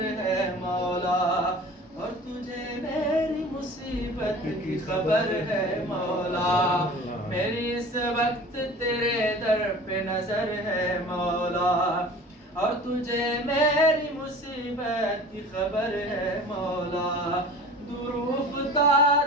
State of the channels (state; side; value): normal; both; correlation 0.41